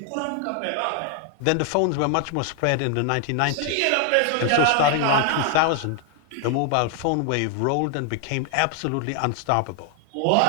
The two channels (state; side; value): different; both; correlation 0.00